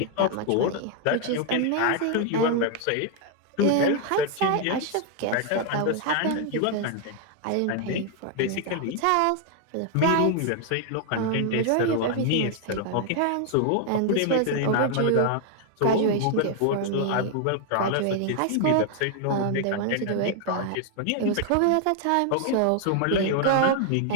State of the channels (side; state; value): both; different; correlation 0.00